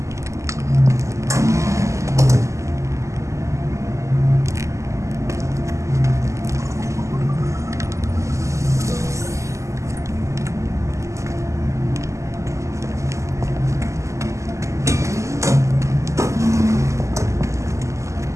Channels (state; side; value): late; left; 0.15 ms